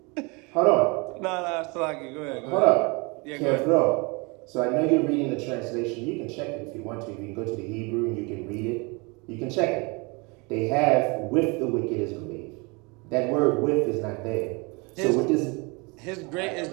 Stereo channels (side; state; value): left; quieter; 28.7 dB